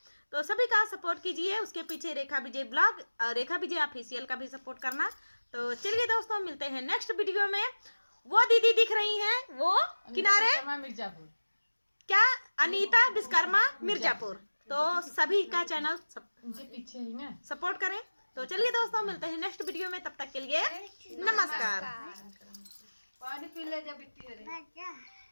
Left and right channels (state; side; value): inverted; both; correlation -1.00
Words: तो सभी का सपोर्ट कीजिए। उसके पीछे रेखा विजय ब्लॉग और रेखा विजय ऑफिशियल का भी सपोर्ट करना। तो चलिए दोस्तों मिलते हैं नेक्स्ट वीडियो में। वो दीदी दिख रही हैं वो किनारे मिर्जापुर, क्या अनीता विश्वकर्मा मिर्जापुर। तो सभी का चैनल पीछे ही ना सपोर्ट करें। तो चलिए दोस्तों मिलते हैं नेक्स्ट वीडियो में। तब तक के लिए नमस्कार। पानी पी ले जब